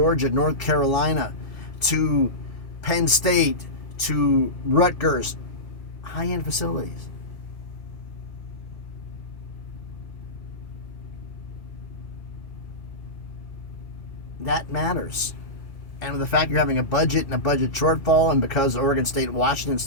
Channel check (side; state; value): right; late; 2.6 ms